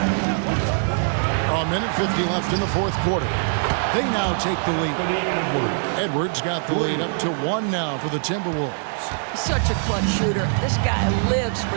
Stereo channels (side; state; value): left; silent; 64 dB below the other